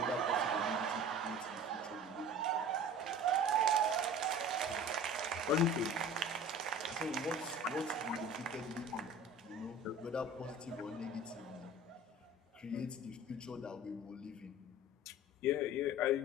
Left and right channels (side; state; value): both; normal; correlation 0.41